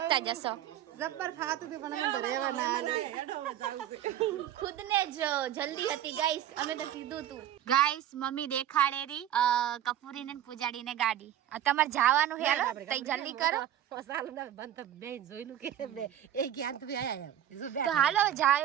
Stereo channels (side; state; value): left; quieter; 11.2 dB